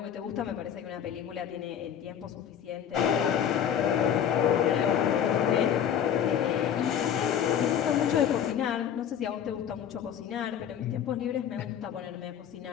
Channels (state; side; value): quieter; right; 9.0 dB